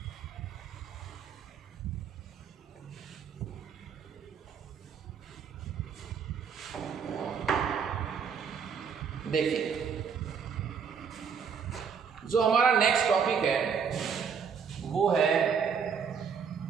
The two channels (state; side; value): quieter; left; 6.5 dB